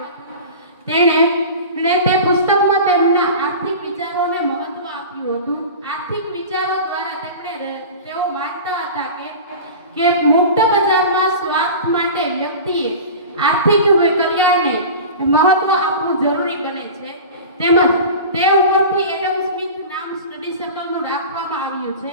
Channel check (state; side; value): inverted; both; correlation -0.34